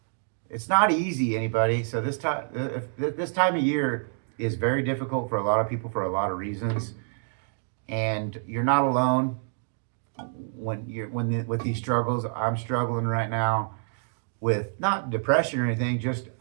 It's not easy, anybody. So this time of year is very difficult for a lot of people for a lot of reasons, and you're not alone. With these struggles, I'm struggling right now with not depression or anything, just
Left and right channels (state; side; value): silent; left; digital silence